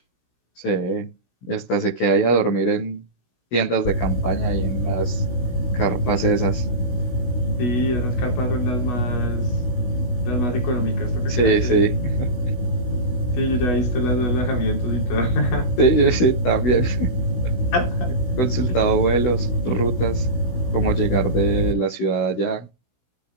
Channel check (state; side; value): late; right; 16 ms